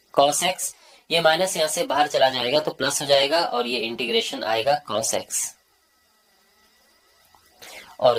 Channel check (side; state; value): both; identical; correlation 1.00